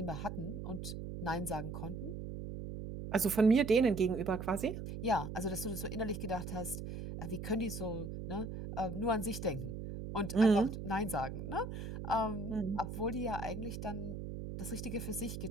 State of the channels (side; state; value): right; noise; hum, 7 dB below the sound